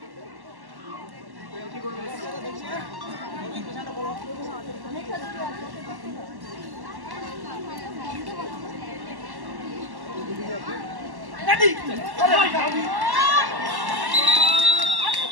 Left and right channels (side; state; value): left; late; 1.1 ms